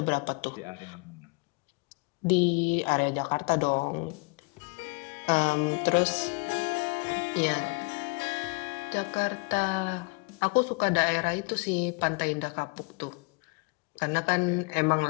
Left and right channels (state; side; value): quieter; right; 30.3 dB